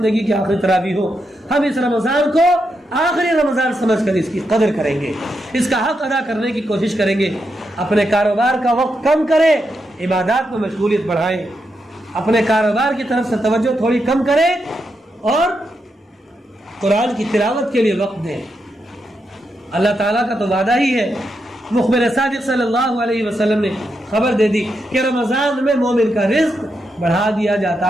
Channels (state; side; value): normal; both; correlation 0.84